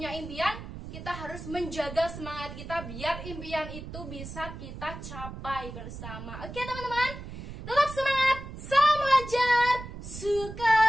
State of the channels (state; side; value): noise; right; rumble, 11 dB below the sound